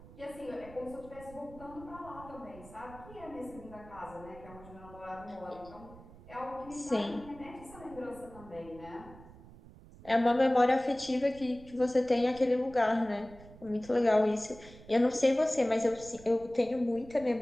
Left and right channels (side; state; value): right; noise; rumble, 19 dB below the sound